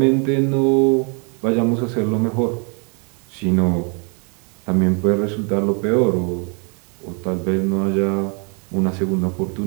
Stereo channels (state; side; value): quieter; left; 36.7 dB